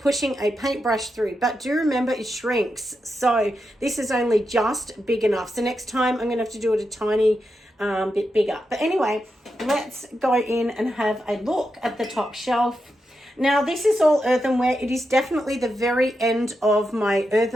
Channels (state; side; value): normal; both; correlation 0.87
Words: a paintbrush through, but do remember it shrinks. So this is only just big enough. So next time I'm gonna have to do it a tiny bit bigger. But anyway, let's go in and have a look at the top shelf. Now this is all earthenware. It is definitely the very end of my